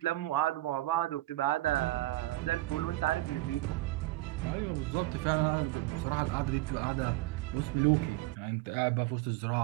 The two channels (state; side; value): quieter; left; 18.2 dB